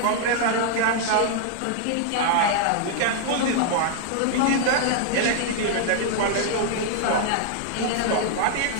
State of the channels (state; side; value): different; both; correlation -0.01